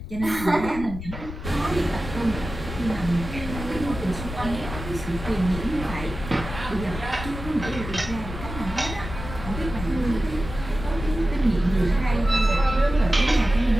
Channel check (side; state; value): left; noise; rumble, 9 dB below the sound